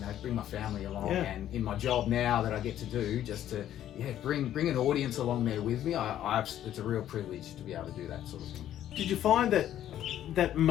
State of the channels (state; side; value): quieter; right; 11.6 dB